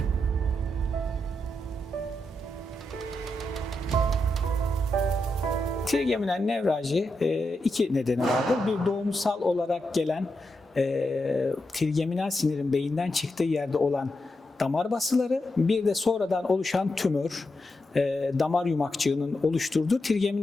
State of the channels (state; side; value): normal; both; correlation 0.86